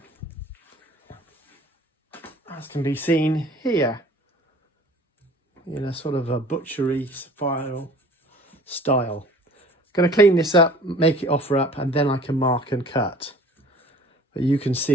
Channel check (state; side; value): normal; both; correlation 0.48